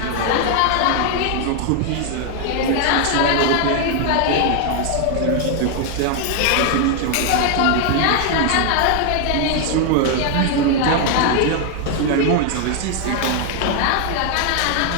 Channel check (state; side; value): different; both; correlation 0.00